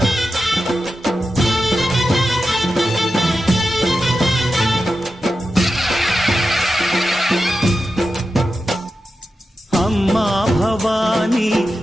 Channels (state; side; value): normal; both; correlation 0.91